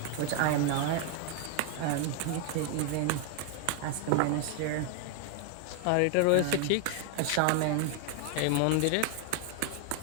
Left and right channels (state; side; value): different; both; correlation 0.00